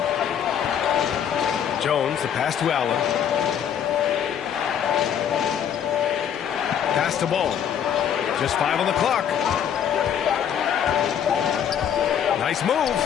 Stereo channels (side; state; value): right; quieter; 8.8 dB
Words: Jones, the pass to Allen. Pass to Ball. Just 5 on the clock. Nice move.